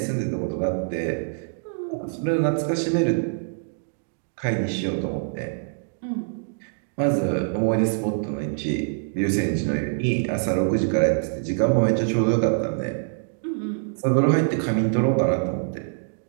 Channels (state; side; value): silent; left; digital silence